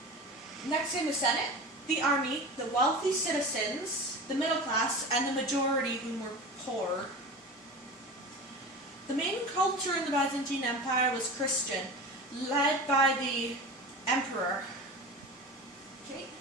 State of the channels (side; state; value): both; normal; correlation 0.31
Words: Next in the Senate, the army, the wealthy citizens, the middle class, and the majority who were poor. The main culture in the Byzantine Empire was Christian, led by the emperor. Okay.